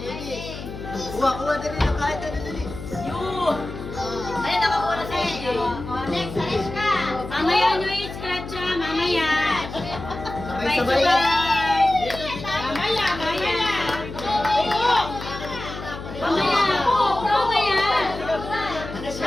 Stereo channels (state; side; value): noise; left; hum, 10 dB below the sound